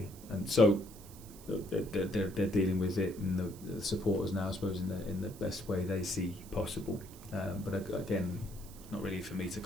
And so they're dealing with it, and the supporters now, I suppose, in the best way they see possible. But again, not really for me to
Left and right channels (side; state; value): right; noise; hiss, 19 dB below the sound